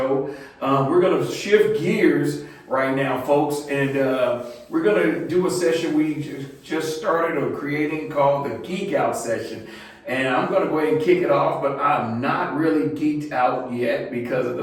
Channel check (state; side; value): identical; both; correlation 1.00